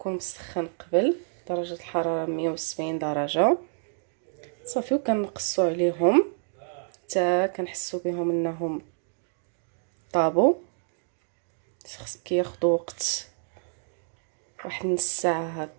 مسخن قبل درجه الحراره 170 درجه. صافي وكنقصوا عليهم حتى كنحسوا بهم انهم طابوا. كياخذوا وقت واحد نص ساعه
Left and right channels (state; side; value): silent; left; digital silence